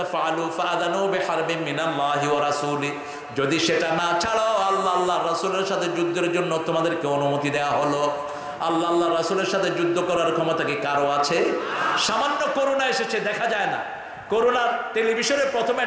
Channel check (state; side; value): identical; both; correlation 1.00